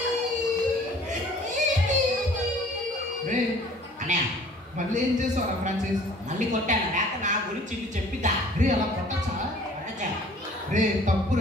రే అన్నయ్య మళ్ళీ ఏం చేస్తావురా ఫ్రాన్సిస్? మళ్ళీ కొట్టాను. లేక నా గురించి ఇది చెప్పిద్దా? రే అలా కొట్టచ్చా? కొట్టచ్చా? రే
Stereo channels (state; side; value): normal; both; correlation 0.52